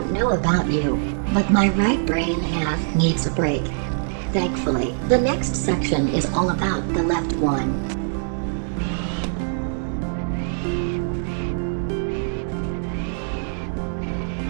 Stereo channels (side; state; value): left; silent; digital silence